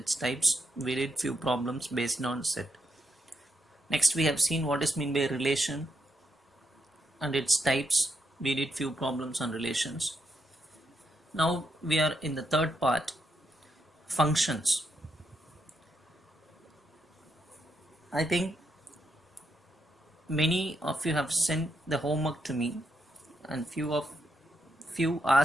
types. We did few problems based on set. Next we have seen what is meant by relation and its types. We did few problems on relations. Now we are in the third part, functions. I think many of you have sent the homework to me, and few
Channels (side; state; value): both; normal; correlation 0.81